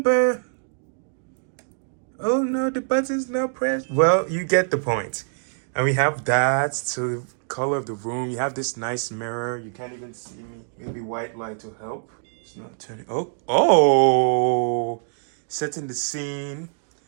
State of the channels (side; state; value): left; silent; digital silence